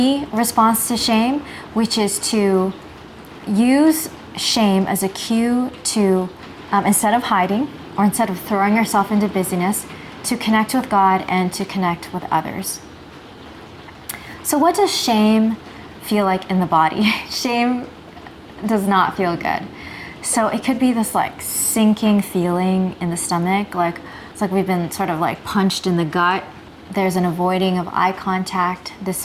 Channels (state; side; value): identical; both; correlation 1.00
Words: response to shame, which is to use shame as a cue to, instead of hiding or instead of throwing yourself into busyness, to connect with God and to connect with others. So what does shame feel like in the body? Shame does not feel good. So it could be this like sinking feeling in the stomach, like it's like we've been sort of like punched in the gut. There's an avoiding of eye contact, this